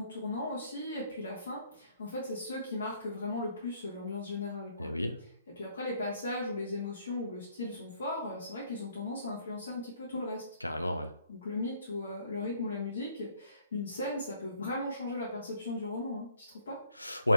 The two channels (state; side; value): inverted; both; correlation -0.63